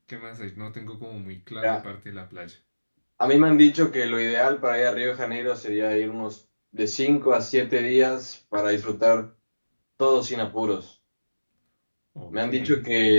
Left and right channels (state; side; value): inverted; both; correlation -1.00